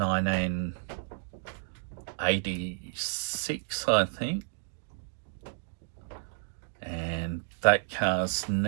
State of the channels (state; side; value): silent; left; digital silence